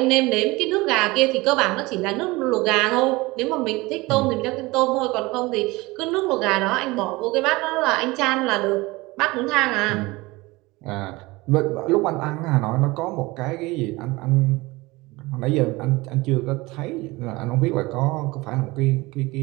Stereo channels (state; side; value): quieter; left; 22.0 dB